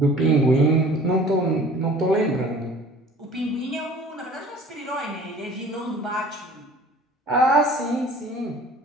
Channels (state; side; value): normal; both; correlation 0.48